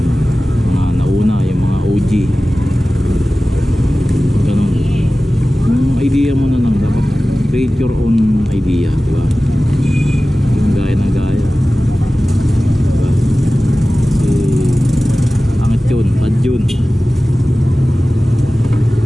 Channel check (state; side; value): normal; both; correlation 0.96